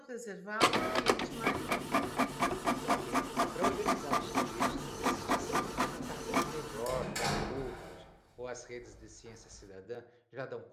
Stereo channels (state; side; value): identical; both; correlation 1.00